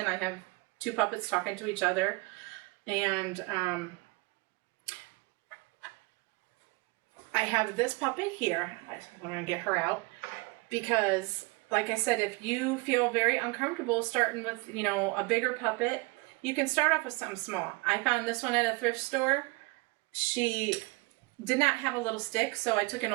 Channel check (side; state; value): left; quieter; 25.1 dB